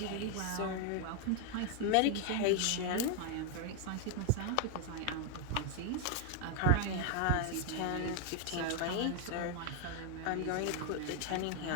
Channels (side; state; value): both; different; correlation 0.01